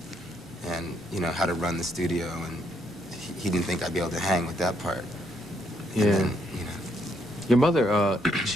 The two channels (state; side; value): normal; both; correlation 0.74